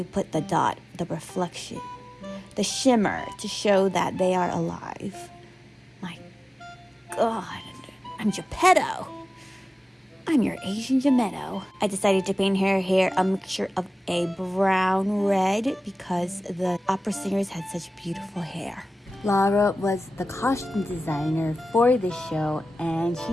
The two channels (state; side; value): normal; both; correlation 0.96